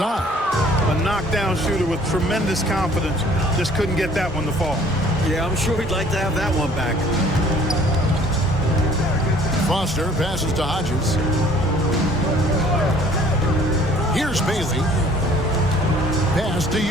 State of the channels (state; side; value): normal; both; correlation 0.55